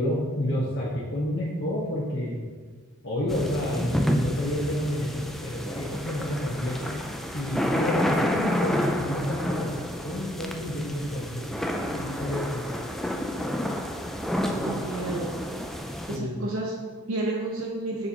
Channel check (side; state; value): both; normal; correlation 0.68